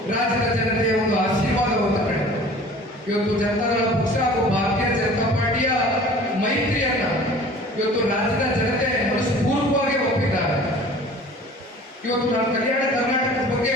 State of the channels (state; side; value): normal; both; correlation 0.45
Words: ರಾಜ್ಯದ ಜನತೆಯ ಒಂದು ಆಶೀರ್ವಾದವನ್ನು ಪಡೆದ. ಇವತ್ತು ಜನತಾದಳ ಪಕ್ಷ ಹಾಗೂ ಭಾರತೀಯ ಜನತಾ ಪಾರ್ಟಿಯ ಮೈತ್ರಿಯನ್ನ ಇವತ್ತು ರಾಜ್ಯದ ಜನತೆ ಮನಸ್ಪೂರ್ವಕವಾಗಿ ಒಪ್ಪಿದ್ದಾರೆ. ಇವತ್ತು ನಾನು ಕಲ್ಯಾಣ ಕರ್ನಾಟಕದ ಬಗ್ಗೆ